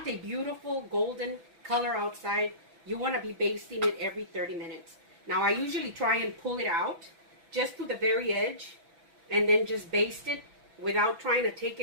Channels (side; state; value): left; late; 6.0 ms